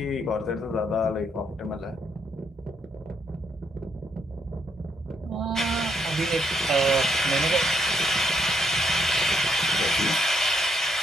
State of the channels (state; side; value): normal; both; correlation 0.75